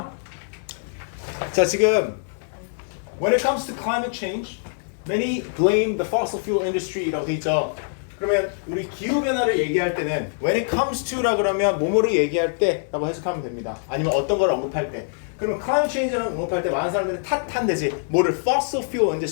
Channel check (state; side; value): silent; right; digital silence